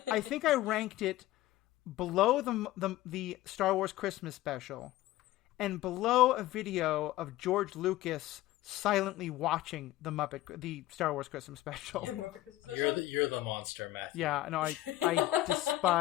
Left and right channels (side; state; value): right; quieter; 15.8 dB